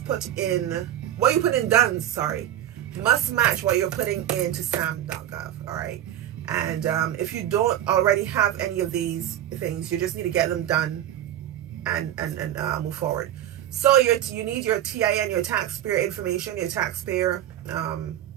put in, what you put in DUNS, sorry, must match what you're putting into sam.gov, all right? And if you don't already have any of these things, you just need to get them done and move forward. So you need your TIN, your taxpayer information, your taxpayer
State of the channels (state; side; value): quieter; left; 11.8 dB